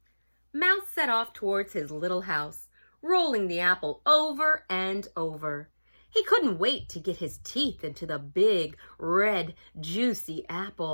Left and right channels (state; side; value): inverted; both; correlation -1.00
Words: Mouse set off towards his little house, rolling the apple over and over. He couldn't wait to get his teeth into the big, red, juicy